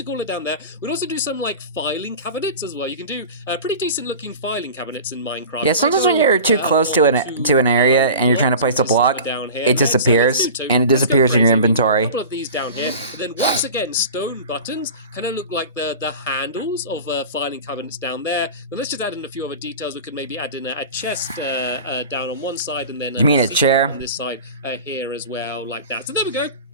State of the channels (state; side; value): inverted; both; correlation -0.36